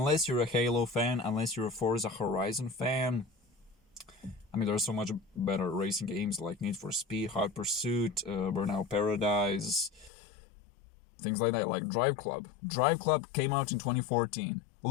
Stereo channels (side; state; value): right; drops out; at 10.1 s